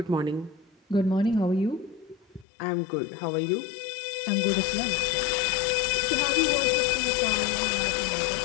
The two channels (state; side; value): drops out; right; at 2.5 s